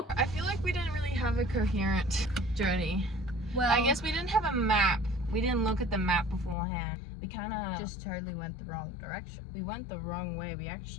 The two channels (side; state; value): right; drops out; at 6.6 s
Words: I feel like we didn't really have a coherent journey. Well, I guess we didn't have a map. We didn't look at the map beforehand. We kind of just totally went the wrong direction. we went the wrong way. We